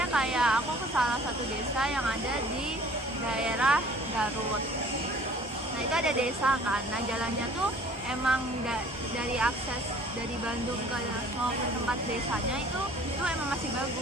kayak aku ke salah satu desa yang ada di daerah Garut. Nah, itu ada desa kan. Nah, jalannya tuh emang dari akses dari Bandung mau ke tempat desanya itu emang masih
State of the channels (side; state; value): both; normal; correlation 0.52